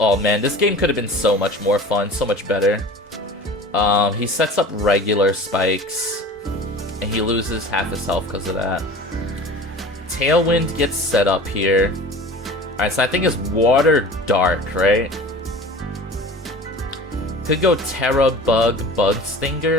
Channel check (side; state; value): both; normal; correlation 0.40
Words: man. This game could have been so much more fun. So much better. He sets up regular spikes. And he loses half his health because of that. Tailwind gets set up here. Alright, so I think it's Water Dark, right? could go Terra Bug Bug